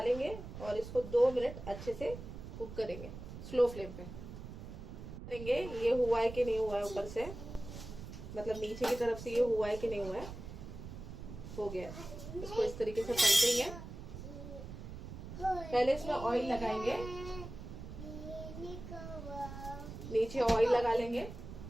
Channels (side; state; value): right; noise; rumble, 11 dB below the sound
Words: और इसको 2 मिनट अच्छे से कुक करेंगे स्लो फ्लेम पे। करेंगे ये हुआ है कि नहीं हुआ है, ऊपर से मतलब नीचे की तरफ से ये हुआ है कि नहीं हुआ है। हो गया, इसको इस तरीके से पलटेंगे। पहले इसमें ऑयल लगाएंगे, नीचे ऑयल लगा लेंगे,